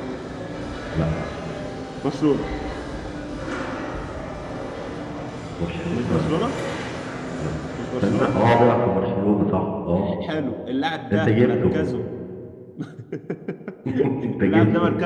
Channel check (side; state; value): both; identical; correlation 1.00